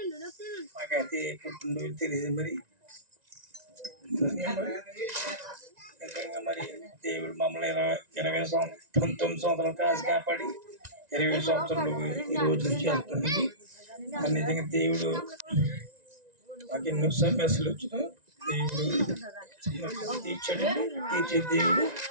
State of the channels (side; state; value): left; late; 1.9 ms